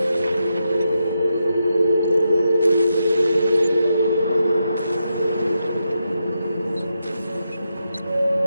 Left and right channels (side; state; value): both; inverted; correlation -0.85